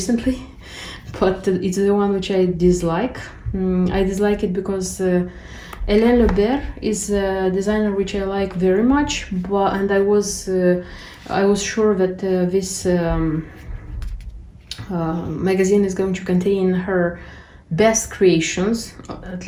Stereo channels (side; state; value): both; identical; correlation 1.00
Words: but it's the one which I dislike. I dislike it because Hélène Lebert is a designer which I like very much, and I was sure that this magazine is going to contain her best creations. At